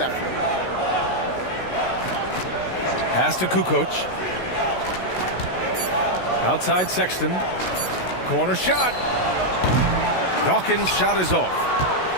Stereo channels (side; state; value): right; late; 16 ms